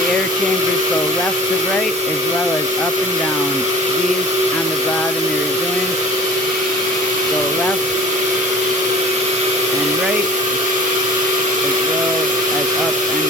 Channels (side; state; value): both; normal; correlation 0.43